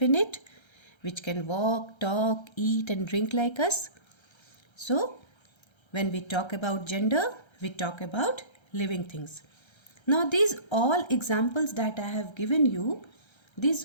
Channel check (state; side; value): late; right; 1.3 ms